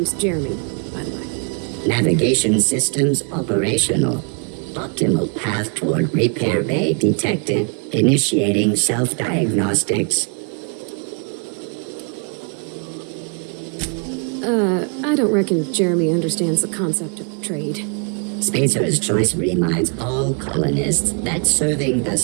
Jeremy, by the by. Navigation systems operational. Optimal path toward repair bay detected. Initiating self-diagnostics. I don't reckon Jeremy understands the concept of trade. Spacer's Choice reminds all colonists that serving the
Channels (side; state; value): left; quieter; 39.7 dB